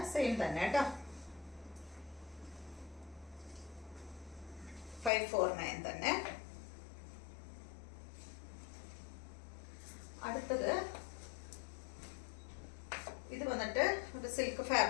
സെയിം തന്നെ കേട്ടോ. 549 തന്നെ. അടുത്തത് ഇത് വന്നിട്ട് ഒരു സിൽക്ക്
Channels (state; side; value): drops out; right; at 5.1 s